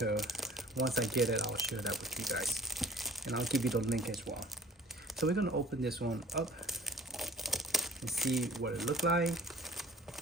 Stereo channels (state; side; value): normal; both; correlation 0.50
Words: Once I get it, I'll share that with you guys, and I'll give you the link as well. So we're gonna open this one up and see what it looked like.